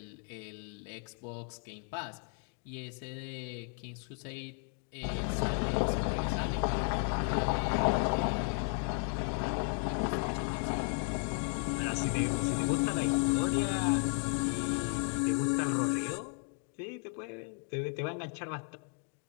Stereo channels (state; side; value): quieter; right; 39.0 dB